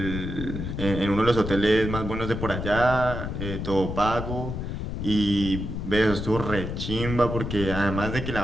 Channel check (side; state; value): left; noise; rumble, 5 dB below the sound